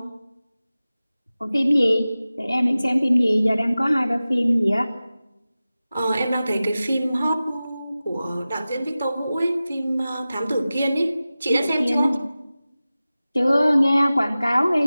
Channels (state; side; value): inverted; both; correlation -0.96